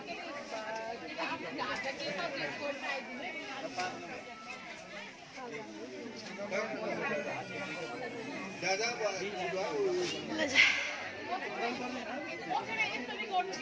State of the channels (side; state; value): both; identical; correlation 1.00